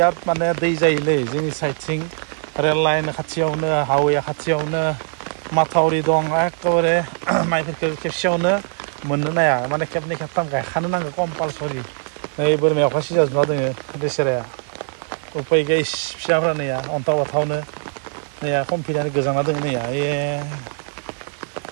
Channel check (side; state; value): left; silent; 65 dB below the other